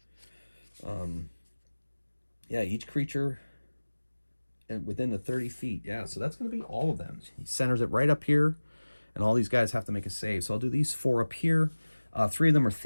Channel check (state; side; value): inverted; both; correlation -1.00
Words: Yeah, each creature within the 30 feet. Yeah, so that's going to be all of them. He centers it right up here, and all these guys have to make a save. So I'll do these 4 up here. 3 of them are